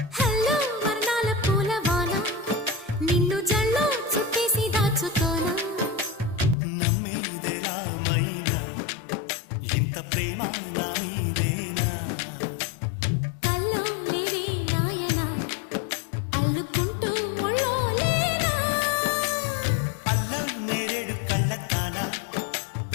హలో వర్ణాల పూలవాన నిన్ను జల్లో చుట్టేసి దాచుకోనా నమ్మేదెలా మైనా ఇంత ప్రేమ నా మీదేనా కల్లో లేవే నాయనా అల్లుకుంటూ ఒళ్ళో లేనా అల్ల నేరేడు కళ్ళతానా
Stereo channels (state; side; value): drops out; right; at 6.6 s